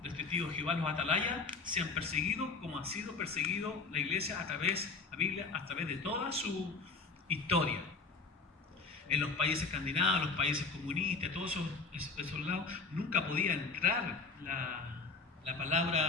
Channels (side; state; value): right; quieter; 4.3 dB